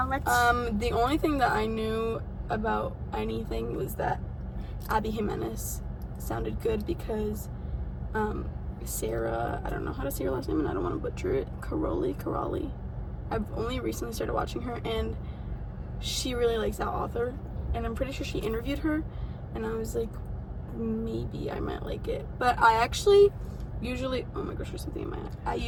the only thing that I knew about anything was that Abby Jimenez sounded good because Sarah, I don't know how to say her last name and I don't want to butcher it, Caroli. I've only recently started watching her and she really likes that author and I'm pretty sure she interviewed her and I was like, maybe I might like it. But I actually usually, oh my gosh, there's something in my eye. I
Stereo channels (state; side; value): identical; both; correlation 1.00